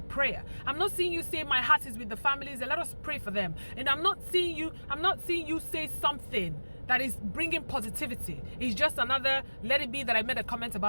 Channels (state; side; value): inverted; both; correlation -1.00